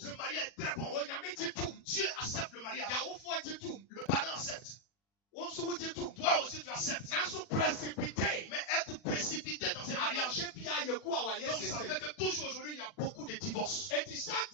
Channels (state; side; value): late; right; 40 ms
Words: Le mariage est très bon. Dieu accepte le mariage. Le parent accepte. Toi aussi tu acceptes. Mais être précipité dans un mariage, donc ça fait que toujours aujourd'hui il y a beaucoup de divorces.